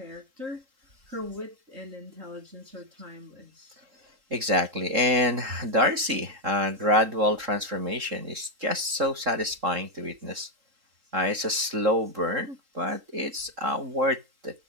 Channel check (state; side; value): late; left; 3.8 ms